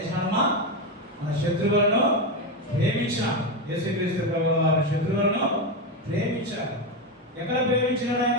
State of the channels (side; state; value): both; normal; correlation 0.11